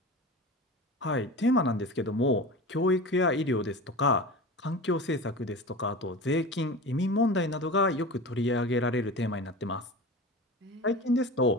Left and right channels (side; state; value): both; normal; correlation 0.31